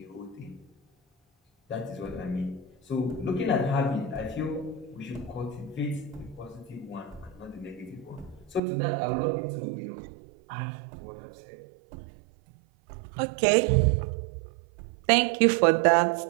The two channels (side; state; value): left; drops out; at 8.6 s